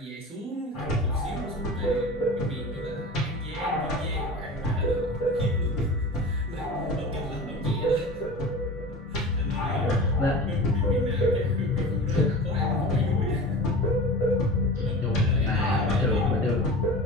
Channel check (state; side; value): normal; both; correlation 0.34